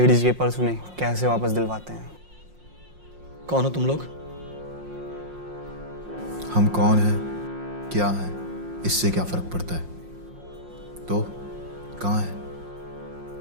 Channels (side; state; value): left; late; 5.6 ms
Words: के पर्स उन्हें कैसे वापस दिलवाते हैं। कौन हो तुम लोग? हम कौन हैं, क्या हैं, इससे क्या फर्क पड़ता है? तो कहाँ है?